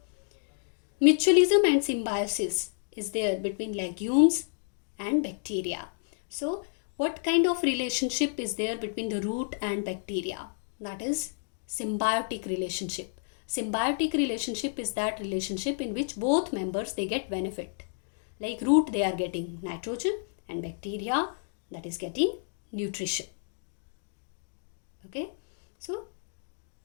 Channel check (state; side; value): silent; right; digital silence